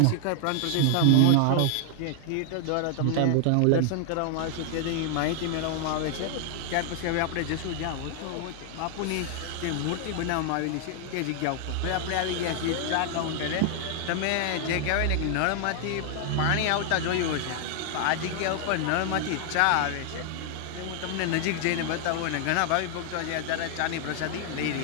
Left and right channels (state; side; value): different; both; correlation 0.00